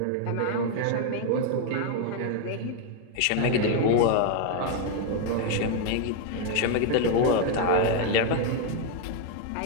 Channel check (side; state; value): both; different; correlation 0.00